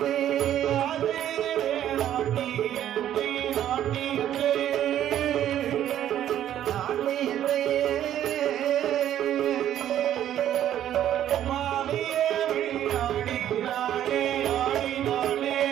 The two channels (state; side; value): quieter; left; 11.3 dB